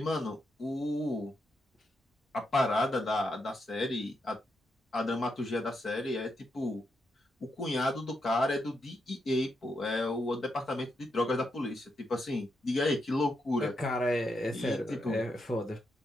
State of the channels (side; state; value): both; normal; correlation 0.82